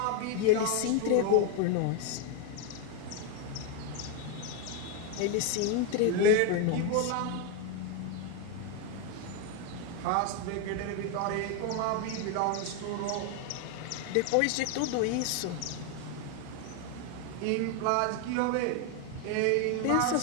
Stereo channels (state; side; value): different; both; correlation 0.01